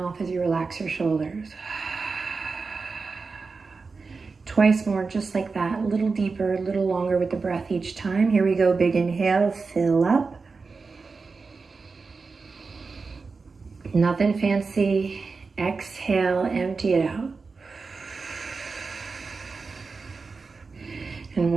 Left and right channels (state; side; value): quieter; left; 4.4 dB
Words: as you relax your shoulders. Twice more, just like that, a little deeper, a little longer with the breath each time. Here we go, big inhale, fill up. Nothing fancy. Exhale, empty it out. And